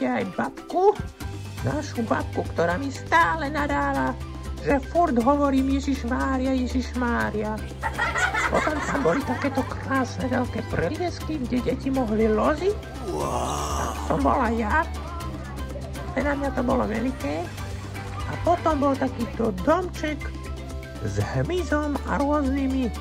aj babku, našu babku, ktorá mi stále nadáva, že furt hovorím Ježišmária, Ježišmária. Potom tam boli takéto krásne veľké preliesky, kde deti mohli loziť. Tam som bola ja. Na mňa to bolo veľké. A potom bol takýto domček s hmyzom a rôznymi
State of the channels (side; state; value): both; identical; correlation 1.00